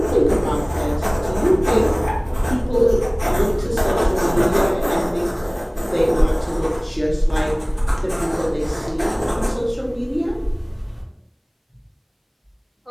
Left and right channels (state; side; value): identical; both; correlation 1.00